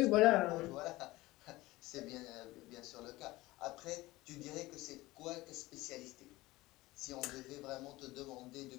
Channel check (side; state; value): right; quieter; 19.3 dB